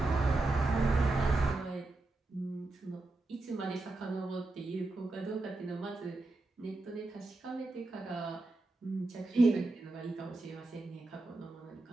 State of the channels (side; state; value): left; quieter; 3.0 dB